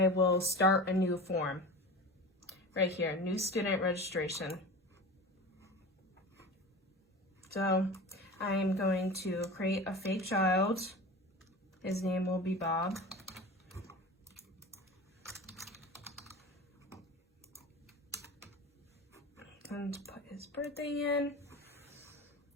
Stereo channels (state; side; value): normal; both; correlation 0.32